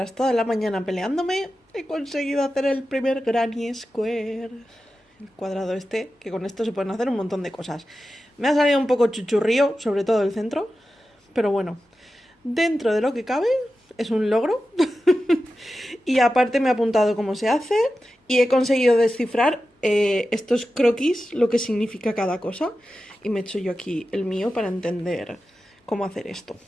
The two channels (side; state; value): both; normal; correlation 0.92